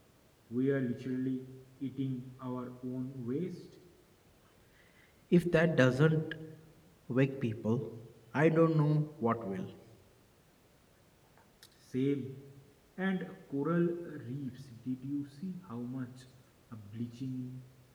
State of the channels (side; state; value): both; identical; correlation 1.00